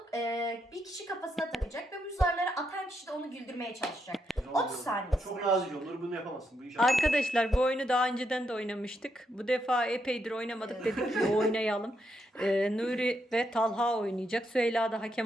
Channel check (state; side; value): normal; both; correlation 0.80